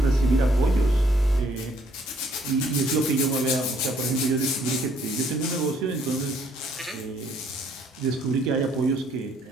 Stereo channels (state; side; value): normal; both; correlation 0.65